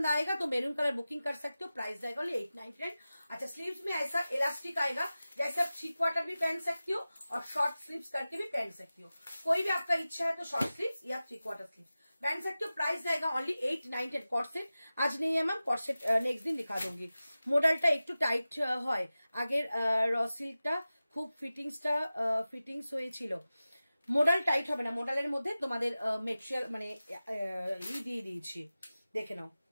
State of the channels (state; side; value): inverted; both; correlation -0.96